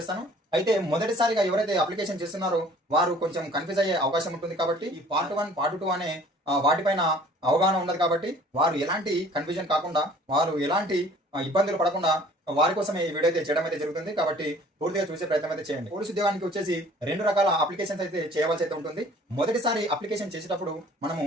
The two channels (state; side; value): normal; both; correlation 0.52